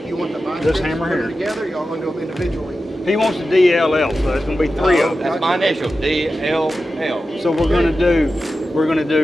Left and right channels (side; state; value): both; normal; correlation 0.92